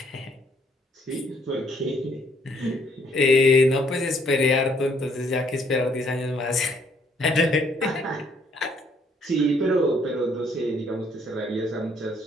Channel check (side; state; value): both; normal; correlation 0.66